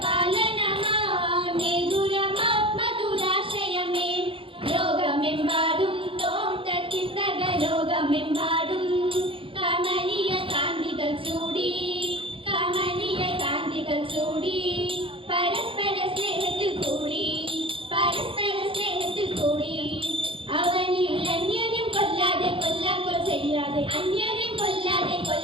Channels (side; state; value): left; late; 0.26 ms